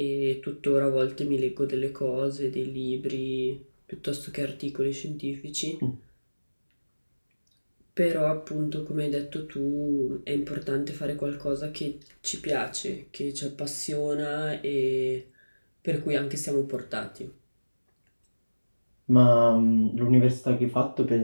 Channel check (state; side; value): inverted; both; correlation -1.00